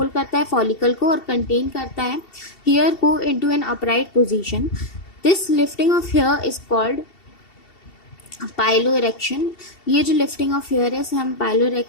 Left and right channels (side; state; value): right; late; 2.7 ms